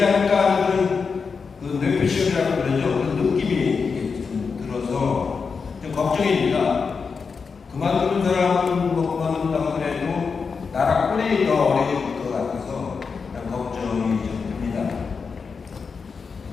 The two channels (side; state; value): right; quieter; 5.3 dB